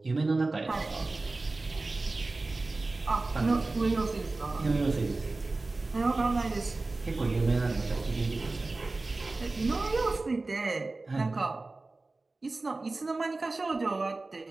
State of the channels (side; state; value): left; quieter; 3.3 dB